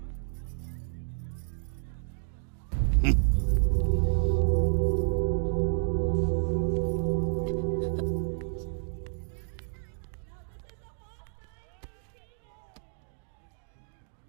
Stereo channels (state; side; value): silent; left; digital silence